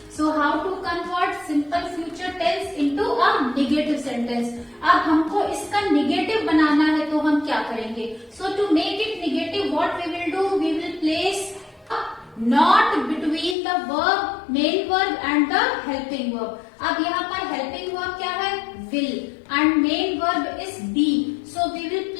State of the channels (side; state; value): right; drops out; at 13.6 s